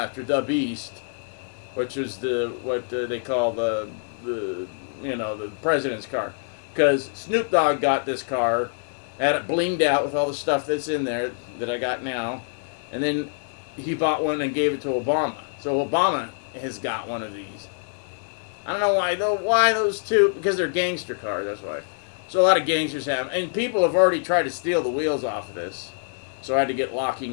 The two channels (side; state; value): right; silent; digital silence